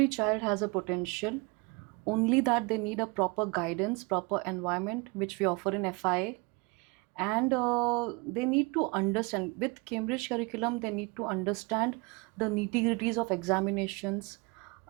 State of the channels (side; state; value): left; quieter; 28.1 dB